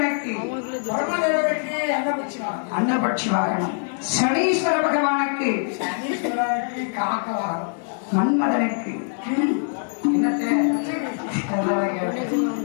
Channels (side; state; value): right; silent; 60 dB below the other